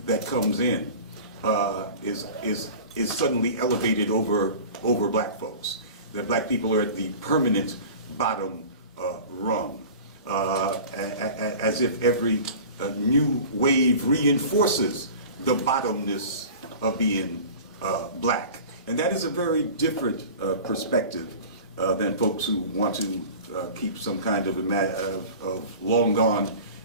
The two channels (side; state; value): both; inverted; correlation -0.38